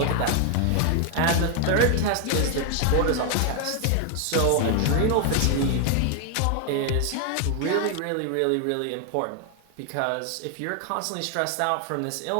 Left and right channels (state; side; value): different; both; correlation 0.00